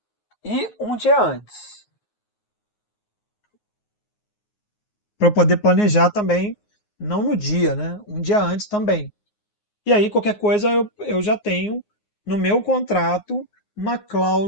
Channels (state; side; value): late; right; 9.5 ms